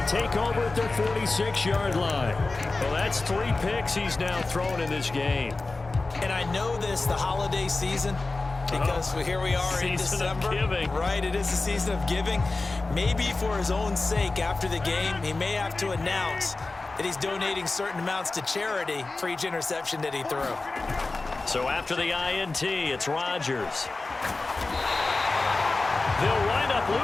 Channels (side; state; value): right; quieter; 3.4 dB